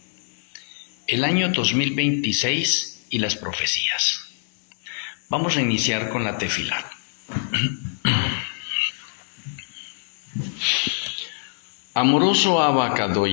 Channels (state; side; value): silent; right; digital silence